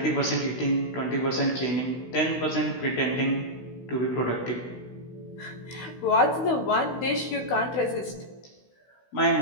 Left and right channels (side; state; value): right; late; 16 ms